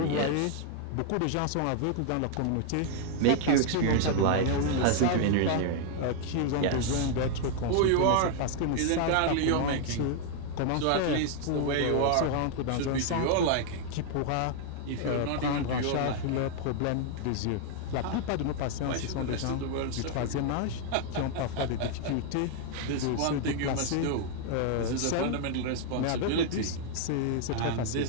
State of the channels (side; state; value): both; different; correlation 0.00